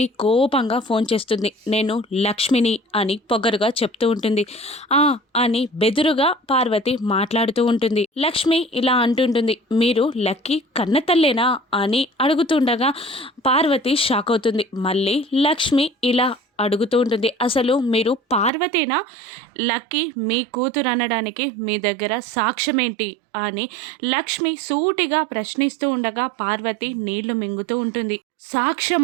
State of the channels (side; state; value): left; drops out; at 18.5 s